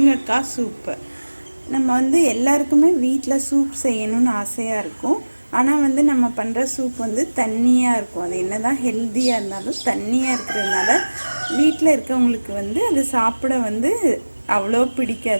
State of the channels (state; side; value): inverted; both; correlation -1.00